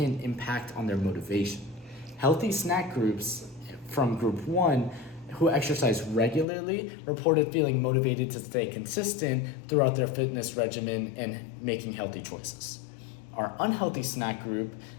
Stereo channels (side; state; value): right; drops out; at 6.5 s